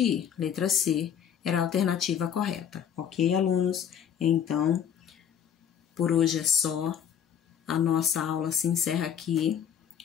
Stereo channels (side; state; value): right; quieter; 8.6 dB